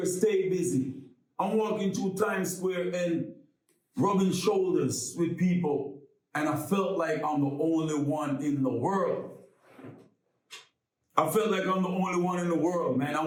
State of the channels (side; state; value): both; identical; correlation 1.00